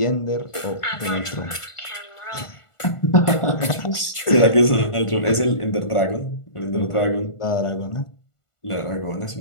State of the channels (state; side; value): late; right; 1.5 ms